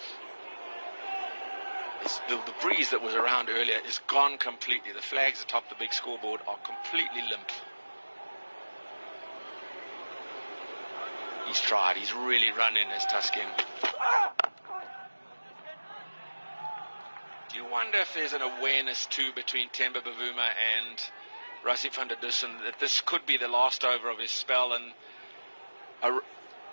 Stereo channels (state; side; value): inverted; both; correlation -1.00